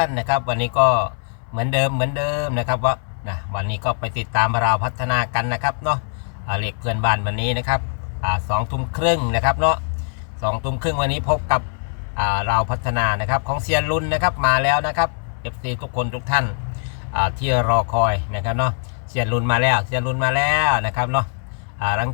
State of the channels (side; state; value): right; silent; 65 dB below the other